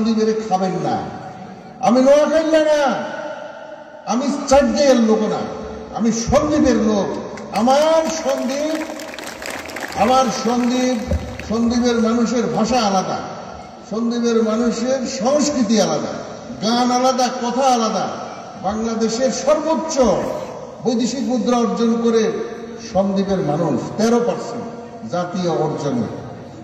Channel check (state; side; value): identical; both; correlation 1.00